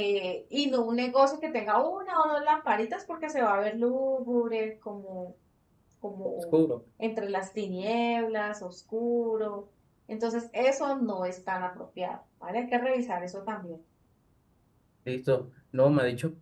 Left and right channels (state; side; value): identical; both; correlation 1.00